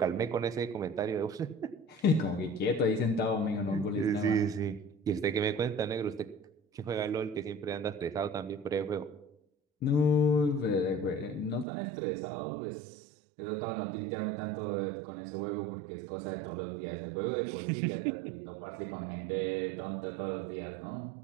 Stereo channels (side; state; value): left; drops out; at 11.7 s